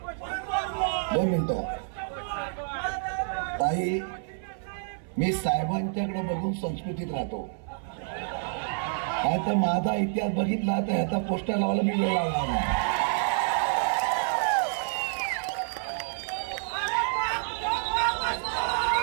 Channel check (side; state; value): left; silent; 58 dB below the other